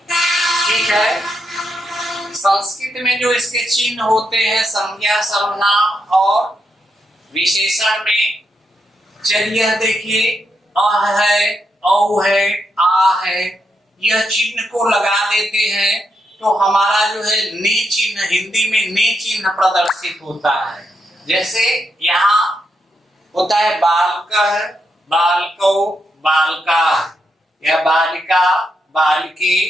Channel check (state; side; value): normal; both; correlation 0.82